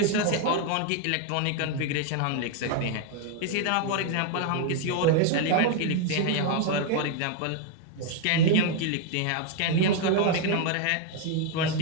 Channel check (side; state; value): both; different; correlation 0.00